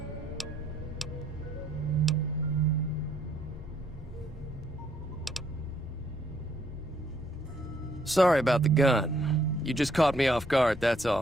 Sorry about the gun. You just caught me off guard, that's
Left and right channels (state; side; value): normal; both; correlation 0.68